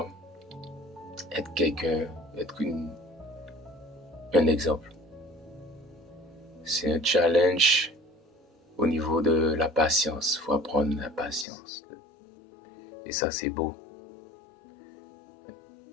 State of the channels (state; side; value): drops out; right; at 11.5 s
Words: être quelqu'un, être un exemple. C'est un challenge au niveau de la patience. Il faut apprendre la patience. Et ça, c'est beau.